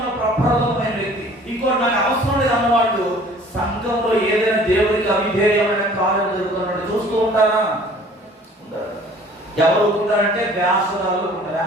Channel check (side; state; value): both; normal; correlation 0.51